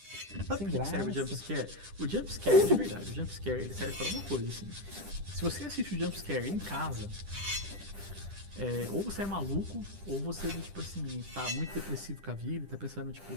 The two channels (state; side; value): late; left; 10 ms